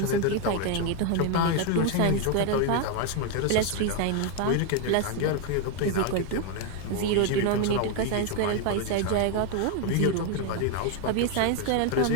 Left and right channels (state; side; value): different; both; correlation 0.01